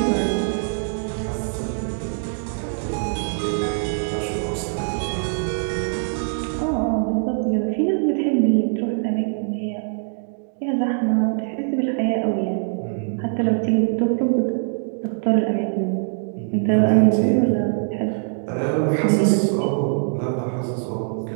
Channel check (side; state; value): left; silent; 64 dB below the other